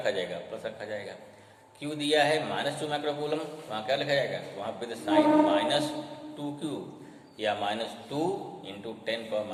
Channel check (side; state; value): both; identical; correlation 1.00